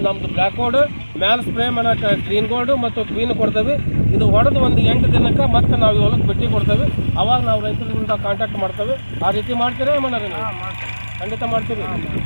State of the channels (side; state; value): both; inverted; correlation -1.00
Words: ನಮ್ಮದು ಬ್ಲ್ಯಾಕ್ ಗೋಲ್ಡ್ ಮ್ಯಾಲೆ ಸ್ಪ್ರೇ ಮಾಡೋಕೆ ಗ್ರೀನ್ ಗೋಲ್ಡು ಮತ್ತು ಕ್ವೀನ್ ಕೊಡ್ತೇವೆ. ಇದು ಹೊಡೆದು ಒಂದು 8 ದಿನಕ್ಕೆ ಮತ್ತೆ ನಾವು ಹೊಲಕ್ಕೆ ಭೇಟಿ ಕೊಡ್ತೇವೆ. ಅವಾಗ ನಾವು ರೈತರಿಂದ ಕಾಂಟ್ಯಾಕ್ಟ್ ಮಾಡ್ತೇವೆ. ಆ ರೀತಿ ಮಾಡ್ತೀರಾ ಮಾಡೋದು? ಖಂಡಿತ ಮಾಡ್ತೀವಿ.